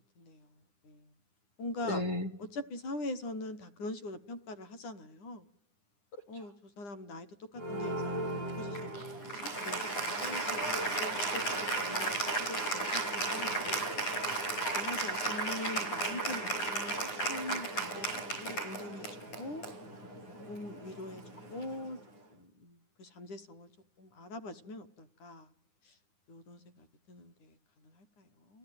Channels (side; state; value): right; late; 9.8 ms